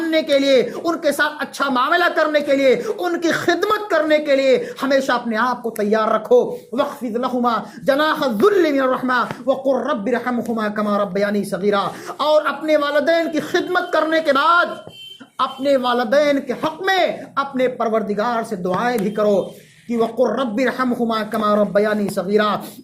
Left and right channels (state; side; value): identical; both; correlation 1.00